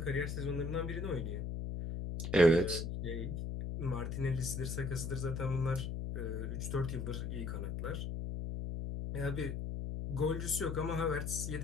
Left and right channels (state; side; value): noise; left; hum, 3 dB below the sound